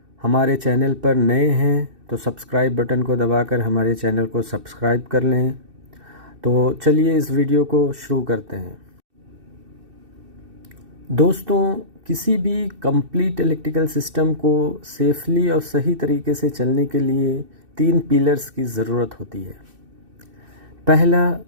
हमारे चैनल पर नए हैं तो सब्सक्राइब बटन को दबाकर हमारे चैनल को सब्सक्राइब कर लें। तो चलिए इस वीडियो को शुरू करते हैं। दोस्तों, किसी भी कंप्लीट इलेक्ट्रिकल सिस्टम को सेफली और सही तरीके से चलने के लिए 3 पिलर्स की ज़रूरत होती है। पहला,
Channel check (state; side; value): late; left; 2.6 ms